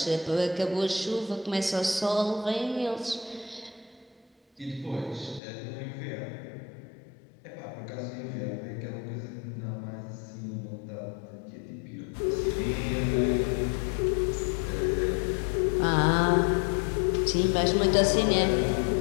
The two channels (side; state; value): right; drops out; at 5.4 s